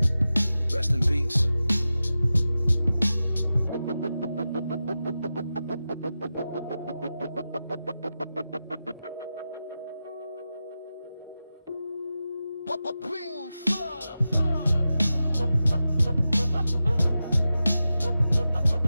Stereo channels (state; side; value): inverted; both; correlation -0.92